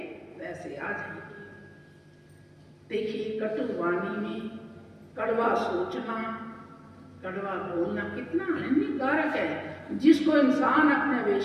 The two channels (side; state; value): both; identical; correlation 1.00